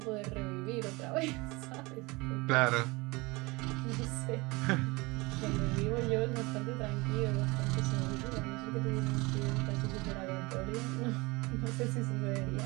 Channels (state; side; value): quieter; left; 24.2 dB